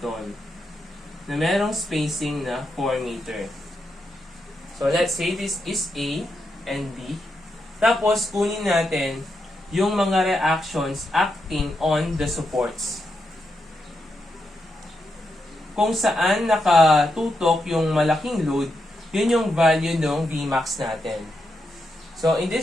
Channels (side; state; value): both; normal; correlation 0.84